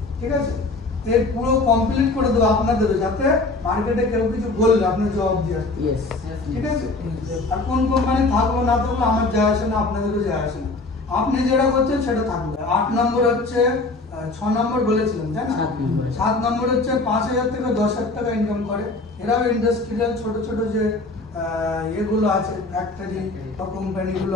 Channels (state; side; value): quieter; right; 3.3 dB